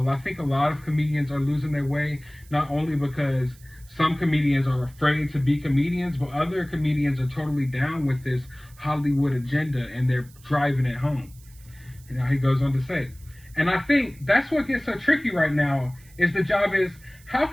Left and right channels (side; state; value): right; noise; hiss, 26 dB below the sound